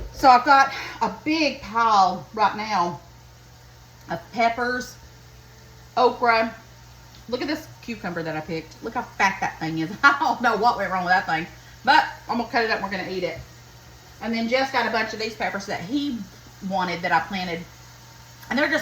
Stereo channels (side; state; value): both; identical; correlation 1.00